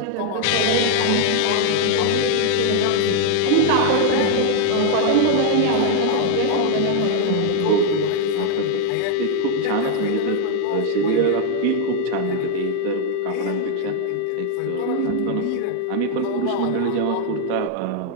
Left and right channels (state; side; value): different; both; correlation 0.01